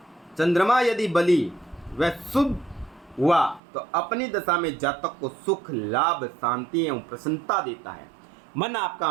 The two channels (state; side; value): drops out; left; at 3.6 s